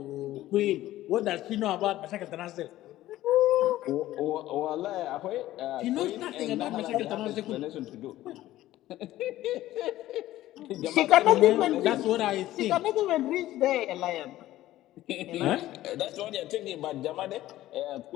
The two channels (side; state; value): right; quieter; 14.9 dB